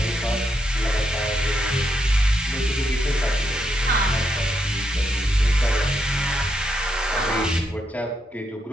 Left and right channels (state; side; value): normal; both; correlation 0.79